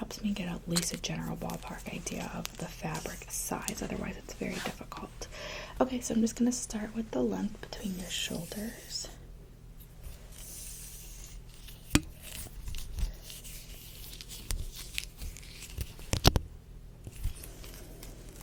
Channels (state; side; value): identical; both; correlation 1.00